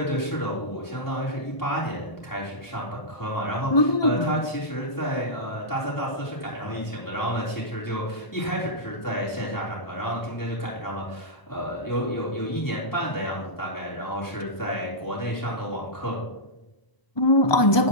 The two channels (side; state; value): right; late; 1.0 ms